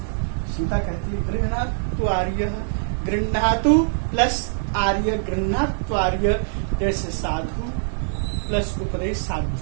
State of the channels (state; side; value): silent; left; digital silence